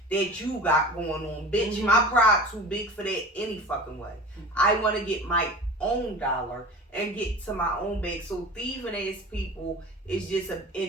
that you got going on. Bitch, my pride too big for that any fucking way. I wanna get my own dollar and get to my own bag. So thieving ass people is just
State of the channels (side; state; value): both; normal; correlation 0.36